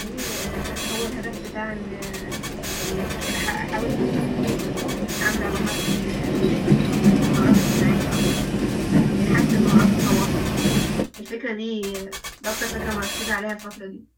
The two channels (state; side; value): identical; both; correlation 1.00